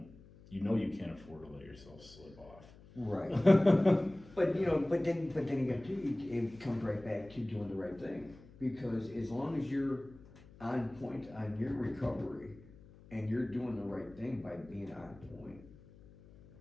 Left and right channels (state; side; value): noise; left; hum, 22 dB below the sound